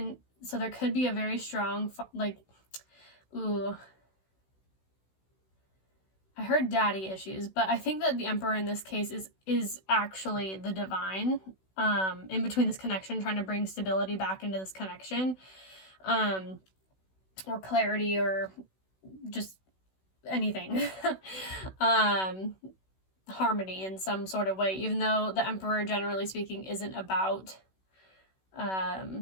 so there could be a very strong, like, ooh, I heard daddy issues, but I think that the Emperor in this case is actually the divine, in between this connection, trying to bring stability back into this connection, or clarity, or just anything, harmony in some sort of way, even though the Emperor, generally speaking, isn't about,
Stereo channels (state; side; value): late; right; 16 ms